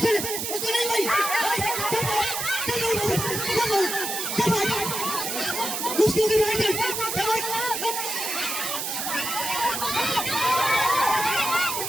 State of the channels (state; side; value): noise; right; hiss, 3 dB below the sound